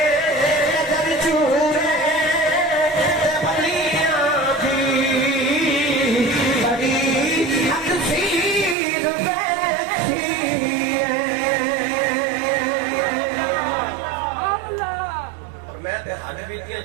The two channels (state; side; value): drops out; left; at 8.8 s